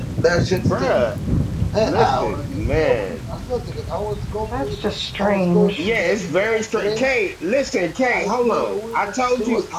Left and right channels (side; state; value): both; identical; correlation 1.00